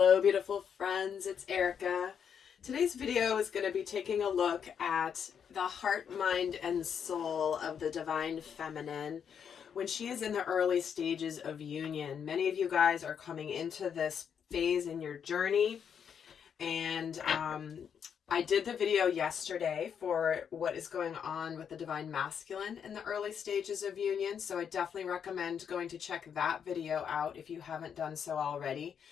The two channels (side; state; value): right; quieter; 7.6 dB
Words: beautiful friends. It's Erika. Today's video is going to be taking a look at the heart, mind, and soul of the divine feminine when she is in the early stages of union. Many of you guys are coming into this phase in your journey, and I did the video yesterday for what is going on with the divine masculine in the early stages of union, so I definitely recommend going to check that video out if you haven't done so already.